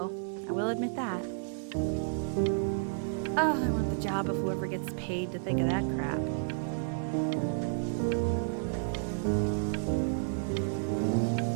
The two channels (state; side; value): silent; left; digital silence